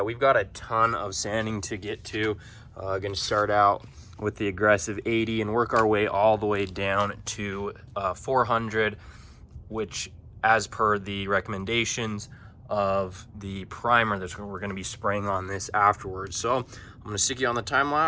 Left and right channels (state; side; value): identical; both; correlation 1.00